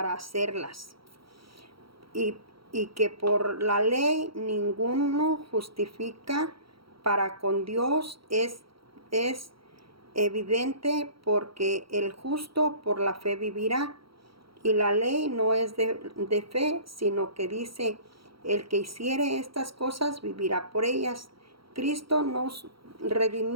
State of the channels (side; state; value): left; late; 0.75 ms